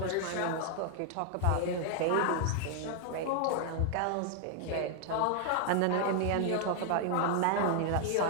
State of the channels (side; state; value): both; different; correlation 0.00